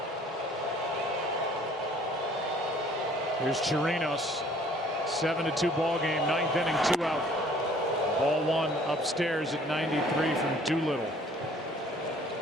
Here's Chirinos. 7-2 ball game, 9th inning, 2 out. Ball one upstairs at 93 from Doolittle.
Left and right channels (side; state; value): both; normal; correlation 0.56